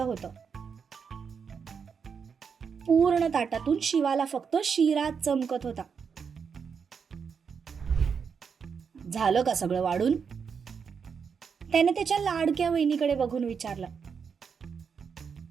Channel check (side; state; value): left; quieter; 6.3 dB